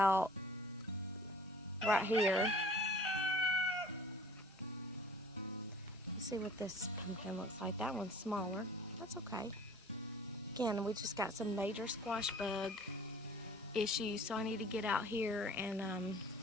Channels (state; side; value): normal; both; correlation 0.49